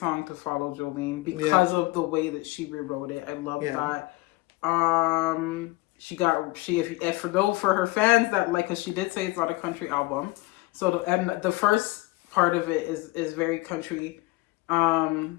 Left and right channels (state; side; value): quieter; right; 21.6 dB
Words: to follow Jolene because of the way that she rewrote it. I love that. For her fans that like, because she did say it's not a country album, so the first part of it is very country,